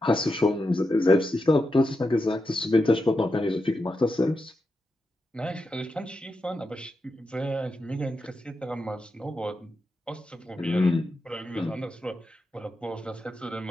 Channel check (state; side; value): normal; both; correlation 0.87